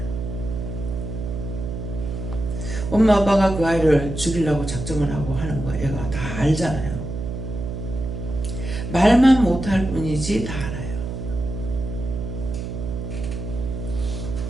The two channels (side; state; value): right; noise; hum, 6 dB below the sound